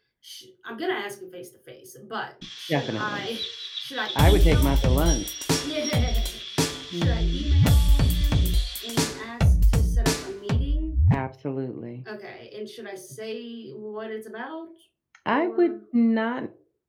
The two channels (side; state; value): both; identical; correlation 1.00